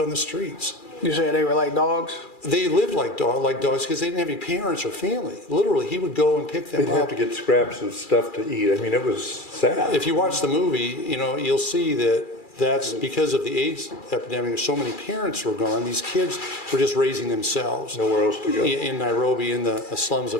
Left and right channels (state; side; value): late; right; 2.4 ms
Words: the streets. You said they were like dogs? They lived like dogs because they didn't have any parents or family. Literally, he would go and pick them up. They'd have to get scraps of stuff to eat. I mean, it was sad. If you watch the movie, you'll see that that's because of the AIDS epidemic. So many parents were gone. These kids were just raising themselves. Nowhere else to go. In Nairobi, in the slums